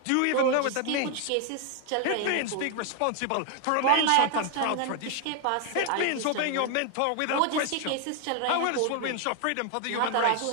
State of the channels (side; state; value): both; different; correlation 0.00